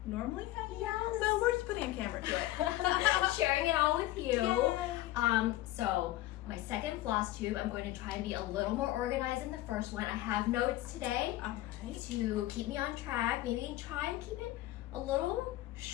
normally hanging out. So we're just putting a camera to it. Sharing it all with you. Yay. So my second floss tube, I'm going to try and be a little more organized than the first one. I have notes today to keep me on track. Maybe try and keep it a little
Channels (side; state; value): right; quieter; 16.3 dB